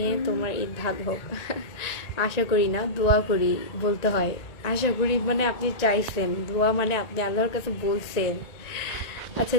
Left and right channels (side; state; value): right; late; 1.8 ms